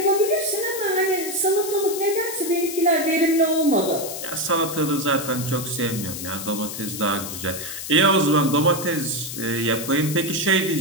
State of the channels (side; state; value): left; noise; hiss, 8 dB below the sound